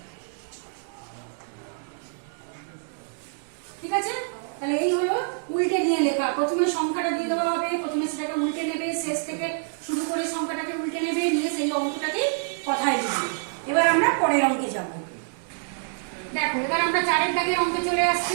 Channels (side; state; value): left; silent; digital silence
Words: ঠিক আছে, তাহলে এই হলো উল্টে নিয়ে লেখা। প্রথমে সংখ্যাটা দিয়ে দেওয়া হবে, প্রথমে সেটাকে উল্টে নেবে, শেষ থেকে শুরু করে সংখ্যাটাকে উল্টে নেবে, নিয়ে সেই অঙ্কটাকে কথায় লিখবে। এবার আমরা পরের অঙ্কে যাব। দেখো, এবার আমরা 4 দাগের অঙ্কে চলে